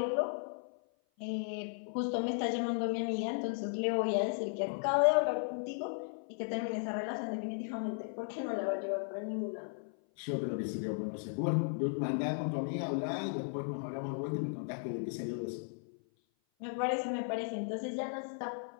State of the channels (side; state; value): right; silent; 54 dB below the other